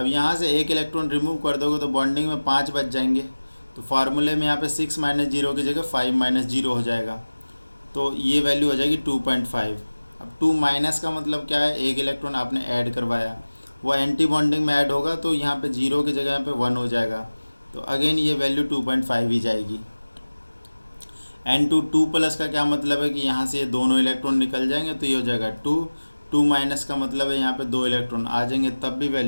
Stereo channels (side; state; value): both; inverted; correlation -1.00